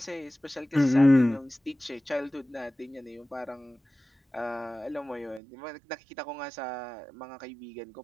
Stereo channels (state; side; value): drops out; left; at 5.4 s